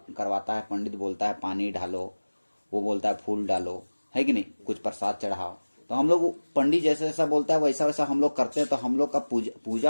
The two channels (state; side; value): inverted; both; correlation -1.00